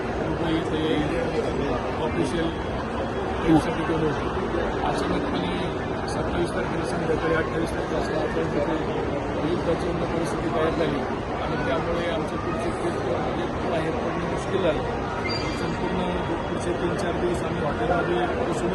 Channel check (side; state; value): both; identical; correlation 1.00